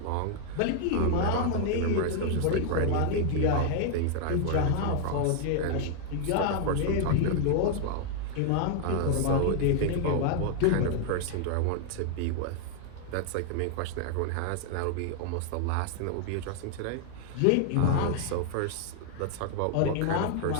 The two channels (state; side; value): different; both; correlation 0.00